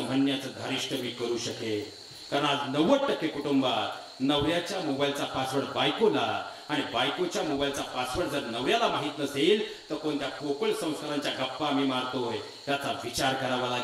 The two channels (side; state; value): both; identical; correlation 1.00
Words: म्हणण्याचं धारिष्ट मी करू शकेल. कारण आज 90% कुटुंबात नवऱ्याच्या मोबाईलचा पासवर्ड बायकोला आणि बायकोच्या मोबाईलचा पासवर्ड जर नवऱ्याला माहित नसेल तर कोणत्या पोकळ संस्कारांच्या गप्पा आम्ही मारतोय याचा विचार करावा